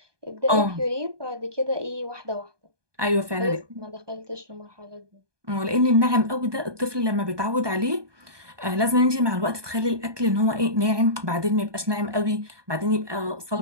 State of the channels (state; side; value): late; left; 1.2 ms